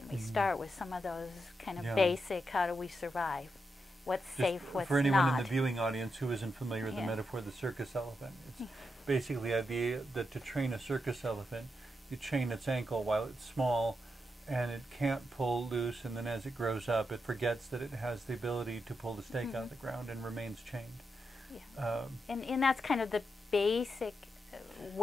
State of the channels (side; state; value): both; normal; correlation 0.85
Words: We start with some of those kind of basic, how do we survive? What's safe, what's not. For anyone in the viewing audience who isn't familiar with the metaphor of the circus elephant, it's basically the idea that to train a circus elephant, you chain its ankle while it's small, and it can't pull loose, and then as it grows up, it forgets that it has the ability to pull the stake out of the ground and remains chained. And that's kind of the basic